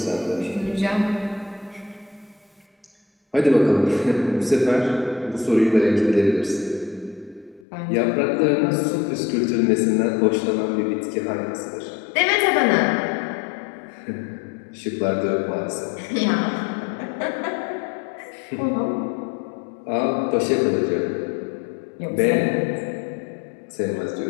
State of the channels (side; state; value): right; drops out; at 7.7 s